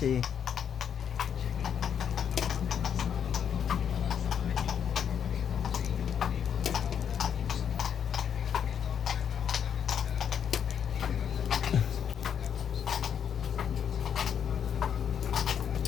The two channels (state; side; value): quieter; right; 8.2 dB